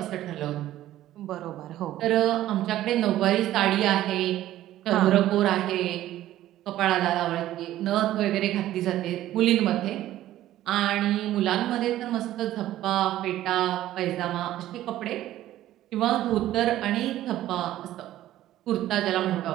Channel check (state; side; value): quieter; left; 13.8 dB